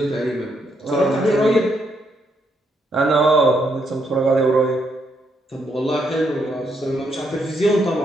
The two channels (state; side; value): normal; both; correlation 0.76